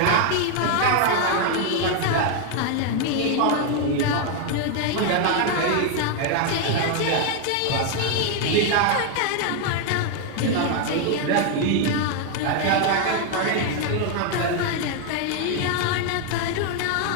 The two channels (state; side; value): different; both; correlation 0.01